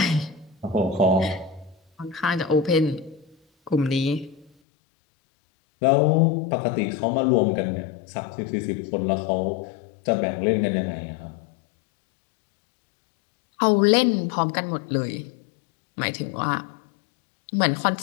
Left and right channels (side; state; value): right; drops out; at 4.5 s